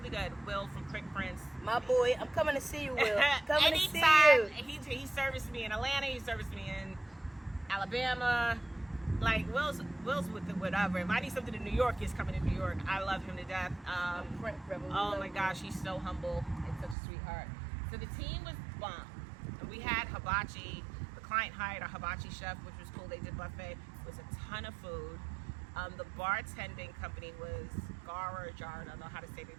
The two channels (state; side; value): drops out; left; at 16.9 s